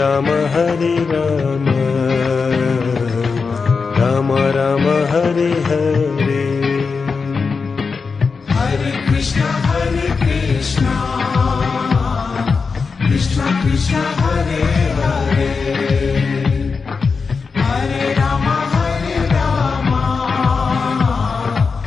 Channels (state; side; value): quieter; right; 4.9 dB